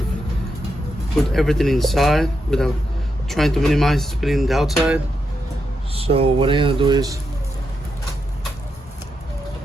put everything inside without trying to minimize spilling the outside. So what I'm gonna do is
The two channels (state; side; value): normal; both; correlation 0.84